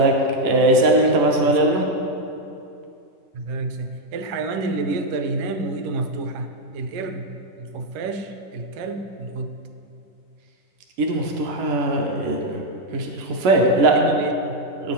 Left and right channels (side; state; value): left; late; 11 ms